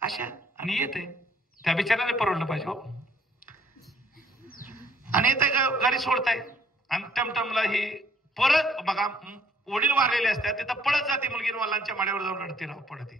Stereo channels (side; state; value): both; normal; correlation 0.63